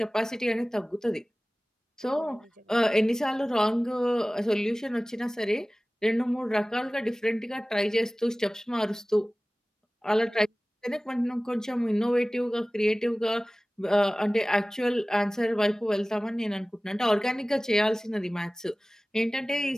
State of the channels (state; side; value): normal; both; correlation 0.98